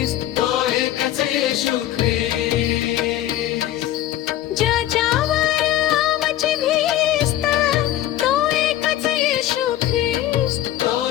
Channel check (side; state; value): right; quieter; 13.2 dB